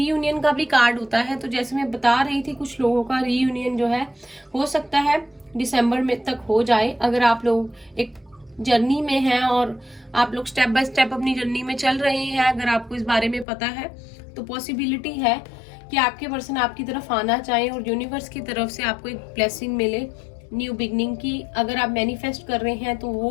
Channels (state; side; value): drops out; right; at 13.5 s